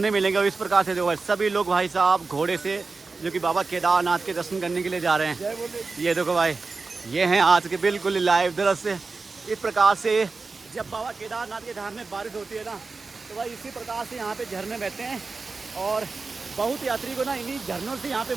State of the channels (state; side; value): quieter; left; 4.1 dB